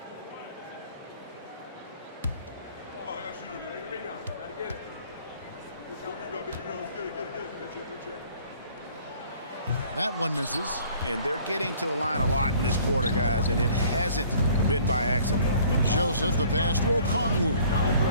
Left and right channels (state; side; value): inverted; both; correlation -0.55